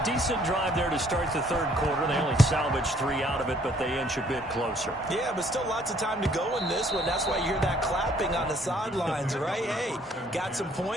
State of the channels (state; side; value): normal; both; correlation 0.62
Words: decent drive there to start the third quarter. They only salvaged 3 out of it, but they inch a bit closer. Yeah, but still lots of time to go in this one. That's why you hear that clapping on the sidelines, right? Hey, got some